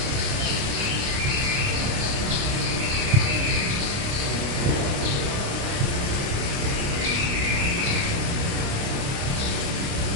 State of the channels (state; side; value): late; left; 29 ms